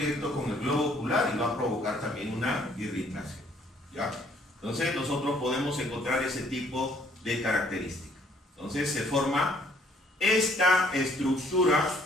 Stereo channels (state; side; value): normal; both; correlation 0.63